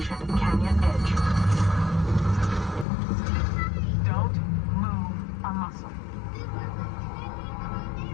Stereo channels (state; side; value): drops out; right; at 2.9 s